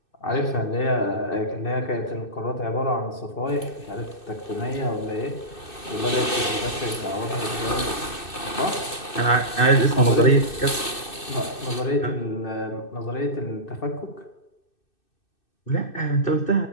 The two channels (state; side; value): late; right; 2.6 ms